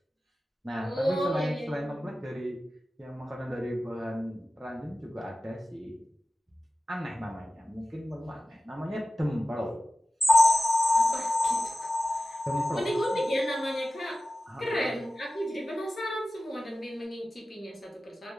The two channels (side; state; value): both; normal; correlation 0.94